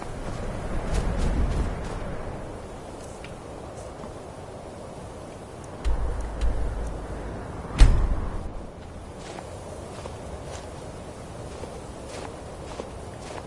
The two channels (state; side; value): identical; both; correlation 1.00